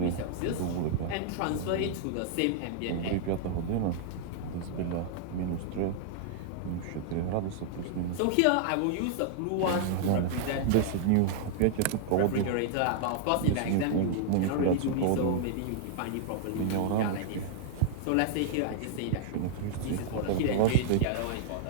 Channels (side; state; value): both; different; correlation -0.01